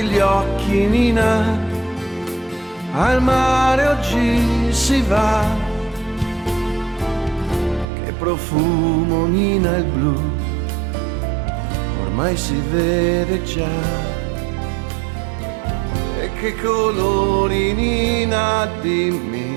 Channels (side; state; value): left; drops out; at 7.9 s